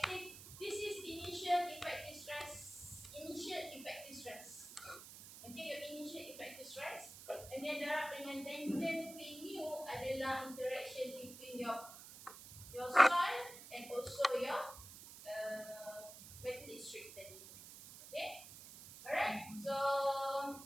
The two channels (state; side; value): noise; right; hiss, 14 dB below the sound